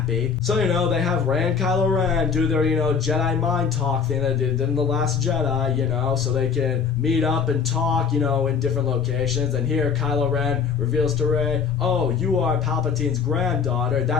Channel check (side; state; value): right; quieter; 6.3 dB